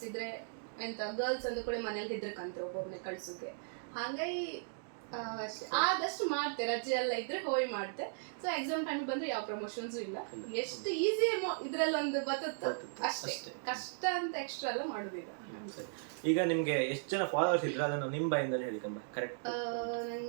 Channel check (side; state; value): left; silent; digital silence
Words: ಇದ್ರೆ ಎಂತ ಗರ್ಲ್ಸ್ ಅಂದ ಕೂಡ ಮನೇಲಿ ಹೆದ್ರಕಂತ್ರ ಒಬ್ಬೊಬ್ನೆ ಕಳ್ಸೋಕೆ. ಹಾಗಾಗಿ ಆದಷ್ಟು ಮಾಡ್ತೆ, ರಜೆ ಎಲ್ಲ ಇದ್ರೆ ಹೋಗಿ ಮಾಡ್ತೆ. ಸೊ ಎಕ್ಸಾಮ್ ಟೈಮ್ ಬಂದ್ರೆ ಯಾವ ಪ್ರಮೋಷನ್ಸ್ ಇಲ್ಲ. ಎಷ್ಟು ಈಸಿ ಇದ್ರಲ್ಲಿ ಒಂದು ಬರುತ್ತೆ ಅಷ್ಟೇ, ಕಷ್ಟ ಅಂತ ಎಕ್ಸ್ಟ್ರಾ ಎಲ್ಲ ಮಾಡುದಿಲ್ಲ. ಈಗ ನಿಮ್ಗೆ ಎಷ್ಟು ಜನ ಫಾಲೋವರ್ಸ್ ಇದ್ರೆ ಅದನ್ನು ನಿಮ್ಮ ಬಾಯಿಂದಲೇ ಹೇಳಿ ಕರೆಕ್ಟ್?